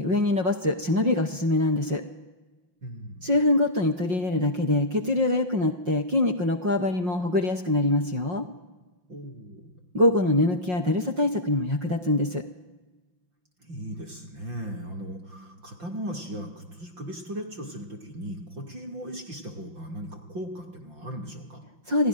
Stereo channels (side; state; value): left; late; 5.6 ms